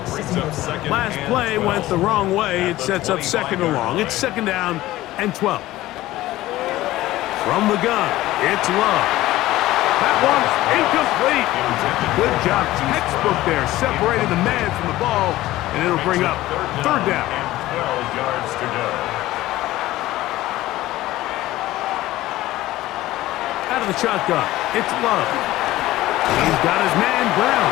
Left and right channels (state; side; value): quieter; right; 16.4 dB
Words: Last play went the wrong way. It sets up 2nd and long. It's 2nd down and 12. From the gun, it's Love. That one's incomplete. Good job, textbook there, separating the man from the ball, and it'll bring up 3rd down. 12 yards to go. Out of the shotgun, it's Love. He's got his man